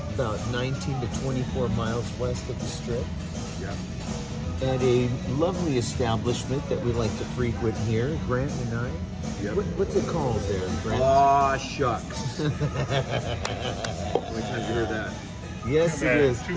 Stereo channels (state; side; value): identical; both; correlation 1.00